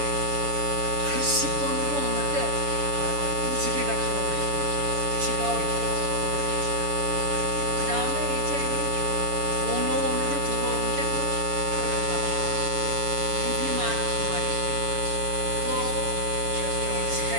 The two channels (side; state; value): left; late; 7.0 ms